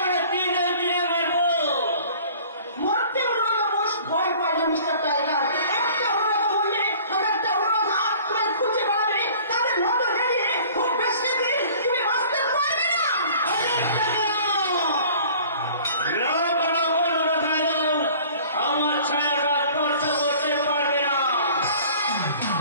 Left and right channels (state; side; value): inverted; both; correlation -0.49